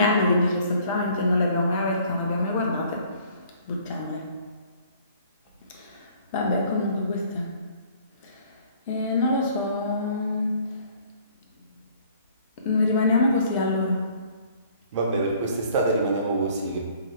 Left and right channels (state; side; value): inverted; both; correlation -0.56